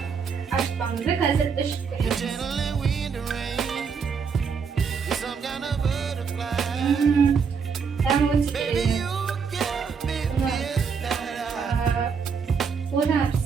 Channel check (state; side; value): quieter; left; 6.0 dB